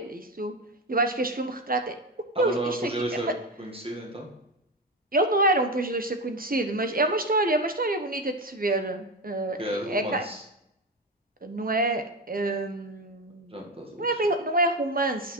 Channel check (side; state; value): both; normal; correlation 0.18